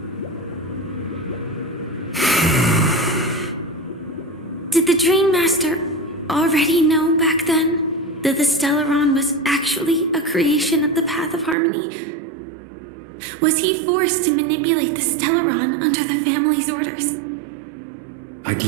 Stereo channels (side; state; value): left; drops out; at 11.6 s